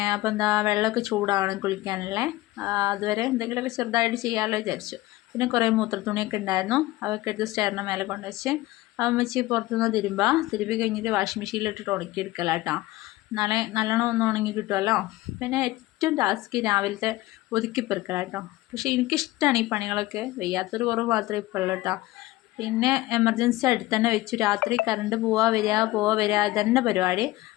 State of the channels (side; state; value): right; quieter; 18.2 dB